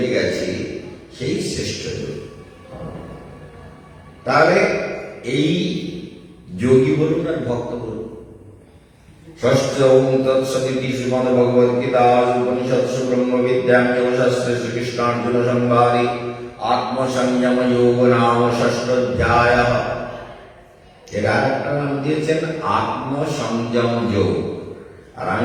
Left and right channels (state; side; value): identical; both; correlation 1.00